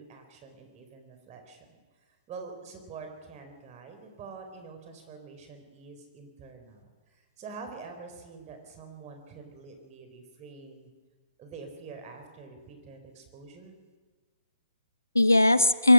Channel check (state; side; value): inverted; both; correlation -0.80